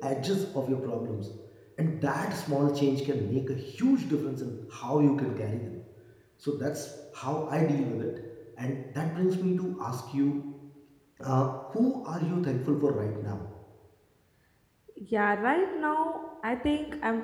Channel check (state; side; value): identical; both; correlation 1.00